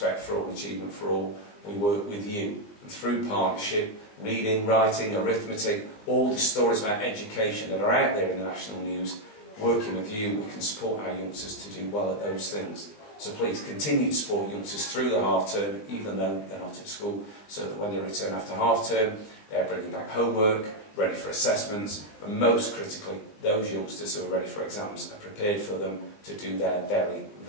for all, achievement for all, we work with you. And through partnership, reading, writing, arithmetic, all the stories about education that are out there in the national news, working with you, we can support our youngsters to do well at those things. So please continue to support youngsters through the half term, even though they're not at school, so that when they return after half term, they're bringing back homework, ready for assessments, and most critically, those youngsters who are ready for exams are prepared for them to do their very,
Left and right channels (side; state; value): right; late; 19 ms